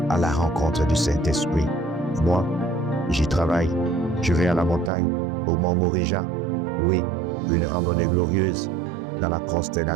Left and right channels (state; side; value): drops out; left; at 4.9 s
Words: à la rencontre du Saint-Esprit. Moi, j'y travaille. Je vais à la montagne, au mont Morija. Oui, une randonnée glorieuse dans la